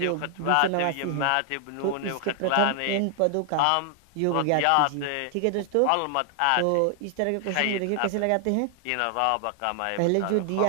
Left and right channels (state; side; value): different; both; correlation 0.00